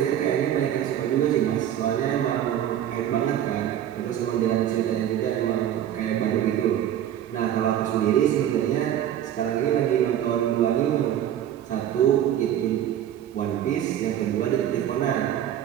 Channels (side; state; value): left; quieter; 10.9 dB